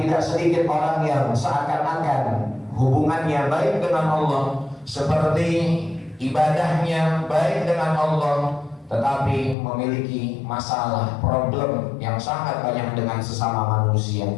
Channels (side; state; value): right; drops out; at 9.6 s